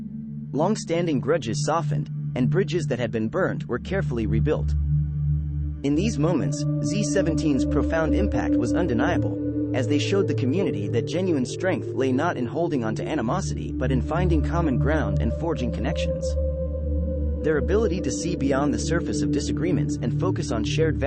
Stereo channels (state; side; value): identical; both; correlation 1.00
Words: Long-standing grudges softened, and bridges that had been burned were carefully rebuilt. In these moments, Z17's profound impact was undeniable, as they showed the community that genuine strength lay not in holding on to animosity but in finding common ground and forging connections. Their ability to see beyond the surface of disagreements and focus on shared